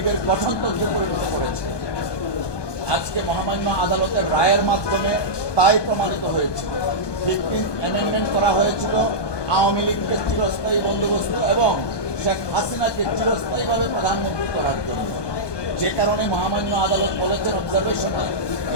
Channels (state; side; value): late; right; 1.2 ms